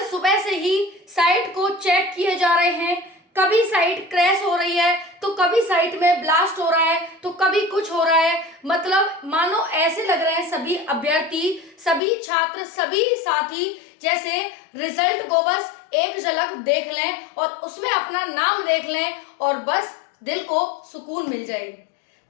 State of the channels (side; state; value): right; drops out; at 12.0 s